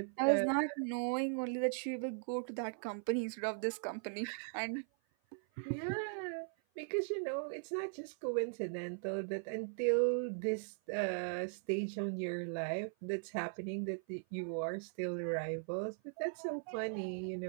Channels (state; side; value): silent; left; 52 dB below the other